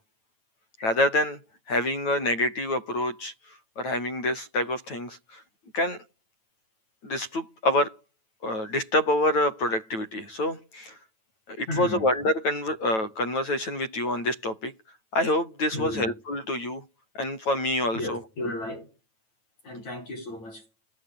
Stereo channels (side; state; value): right; late; 9.1 ms